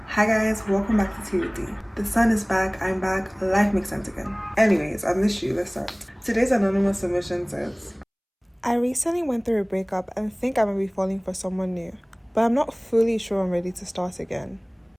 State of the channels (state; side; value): identical; both; correlation 1.00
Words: Hi guys, welcome back to Tea with D. The sun is back, I'm back, life makes sense again. Anyways, I missed you, let's start. Today's anonymous submission says, I recently went through a breakup and think I might be falling for someone new, but I'm not fully sure I'm ready to start again.